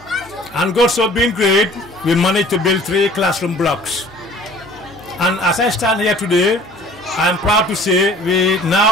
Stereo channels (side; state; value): both; normal; correlation 0.50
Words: and God so being great, we managed to build 3 classroom blocks. And as I stand here today, I am proud to say we